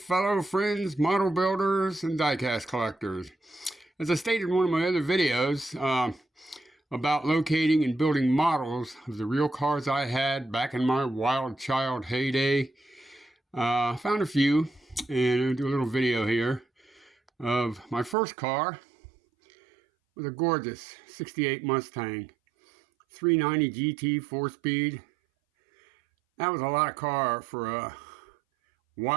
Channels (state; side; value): drops out; left; at 18.2 s